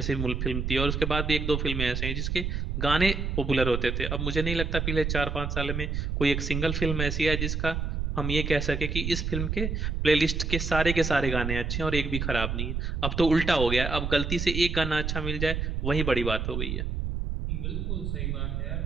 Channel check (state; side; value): noise; right; rumble, 2 dB below the sound